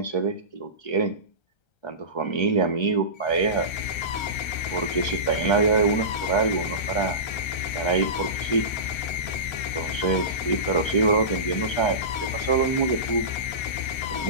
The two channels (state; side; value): late; right; 1.3 ms